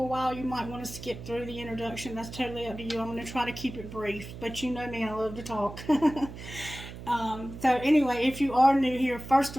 a while, you might want to skip through the introduction. That's totally up to you. I'm going to try to keep it brief, but you know me, I love to talk. So anyway, if you are new here, first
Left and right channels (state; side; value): noise; right; hum, 12 dB below the sound